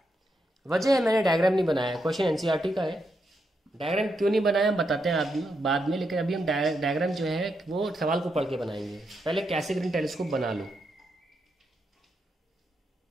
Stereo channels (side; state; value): both; normal; correlation 0.82